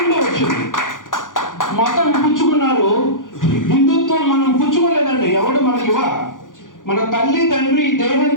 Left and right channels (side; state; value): right; late; 0.89 ms